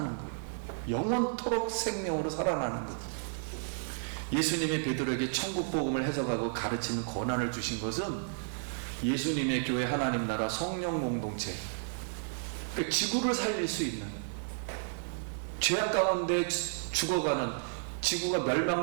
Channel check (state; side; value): silent; left; digital silence